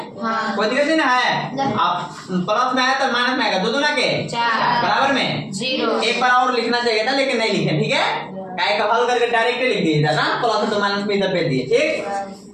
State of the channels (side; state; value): both; identical; correlation 1.00